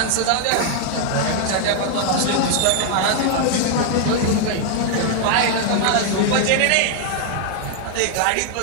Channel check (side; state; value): both; different; correlation 0.00